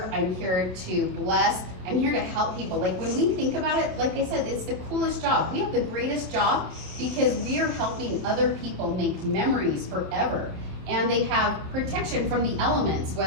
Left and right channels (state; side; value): late; left; 27 ms